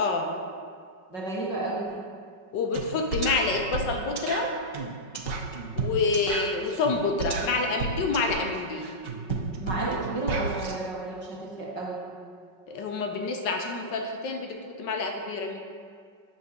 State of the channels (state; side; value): late; right; 5.4 ms